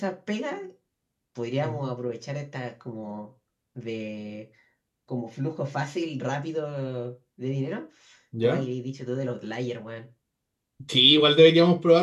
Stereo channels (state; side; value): identical; both; correlation 1.00